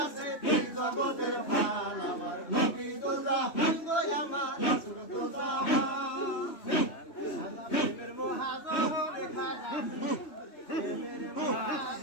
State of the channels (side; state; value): right; late; 3.2 ms